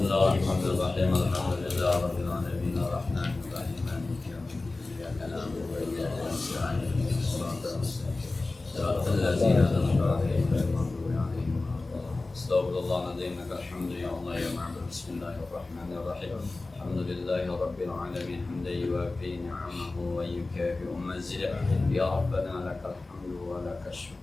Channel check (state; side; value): quieter; right; 3.3 dB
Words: Alhamdulillahirabbil alamin arrahmanir rahim maliki yaumiddin iyyaka na'budu wa iyyaka nasta'in ihdinas siratal mustaqim siratal ladzina an'amta 'alaihim ghairil maghdubi 'alaihim waladdallin. Astaghfirullahaladzim alhamdu ya Allah ya ma'bud. Bismillahirrahmanirrahim. Alhamdulillahi rabbil alamin hamdan yuwafi ni'amahu wa yukafi mazidah. Ya Rabbana lakal hamdu wa lakal